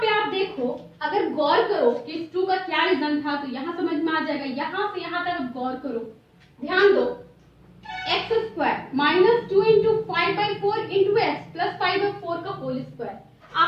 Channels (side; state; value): both; identical; correlation 1.00